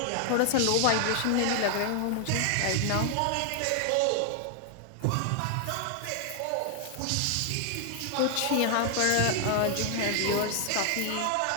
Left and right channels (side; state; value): both; different; correlation 0.00